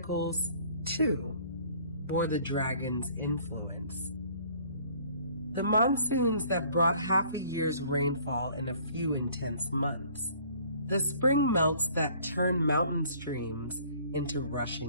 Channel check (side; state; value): both; inverted; correlation -0.55